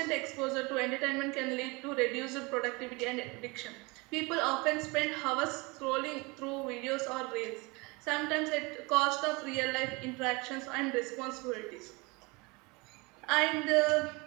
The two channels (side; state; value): left; quieter; 26.6 dB